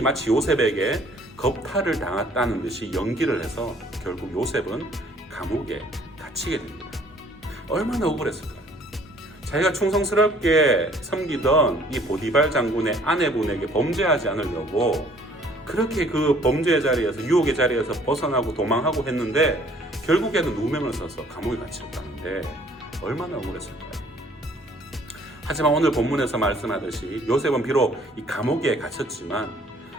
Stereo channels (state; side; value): normal; both; correlation 0.58